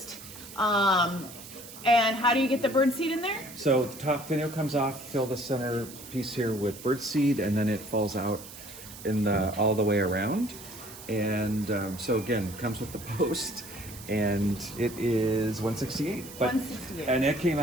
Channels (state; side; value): noise; right; hiss, 15 dB below the sound